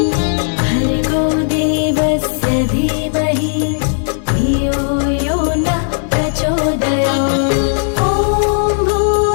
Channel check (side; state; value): right; silent; digital silence